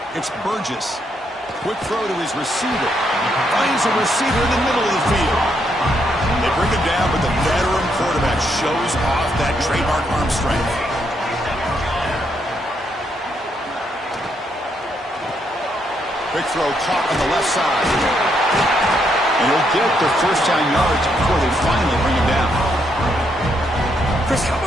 It's Burgess. Quick throw to his receiver. Finds a receiver in the middle of the field. They bring him down, but the veteran quarterback shows off that trademark arm strength. Quick throw caught on the left side. And he'll get the first down yards before they finally bring him down. Chris, how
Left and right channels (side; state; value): both; normal; correlation 0.76